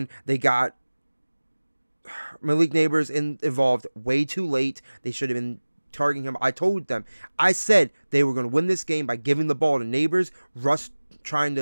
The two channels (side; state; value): both; inverted; correlation -1.00